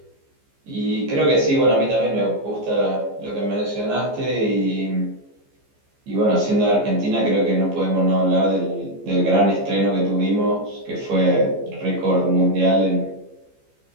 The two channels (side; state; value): left; late; 15 ms